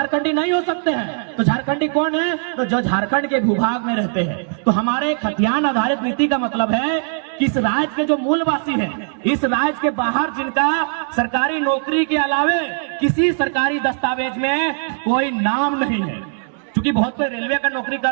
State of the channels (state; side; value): silent; left; 59 dB below the other